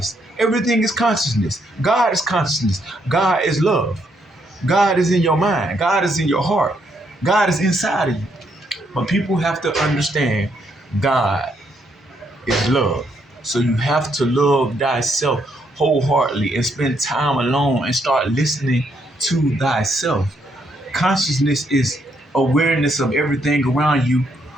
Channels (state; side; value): normal; both; correlation 0.74